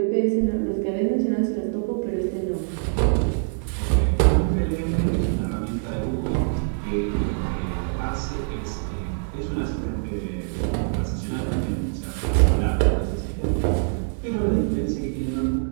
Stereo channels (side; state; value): left; silent; digital silence